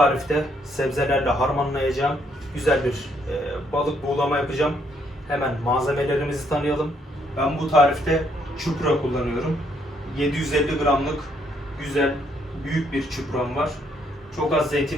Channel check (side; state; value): both; normal; correlation 0.71